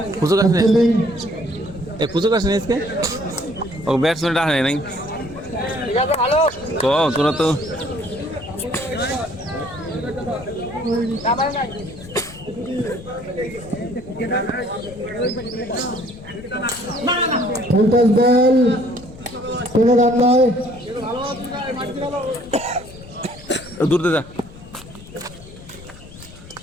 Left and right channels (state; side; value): noise; left; rumble, 18 dB below the sound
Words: পুজো কাছে এ পুজো কাছে নেই इसके ও ব্যাটসম্যান ডাক নাই তো তোরা তো ফুলটস বল কোনো রান নয় দূর দে যা